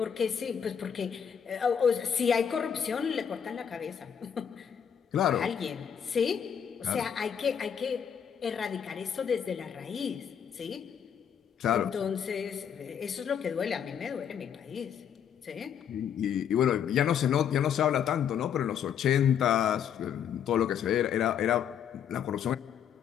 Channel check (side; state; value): right; quieter; 8.2 dB